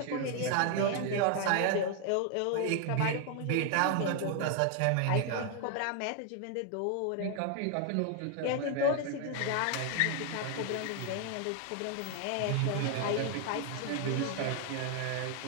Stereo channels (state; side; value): different; both; correlation 0.00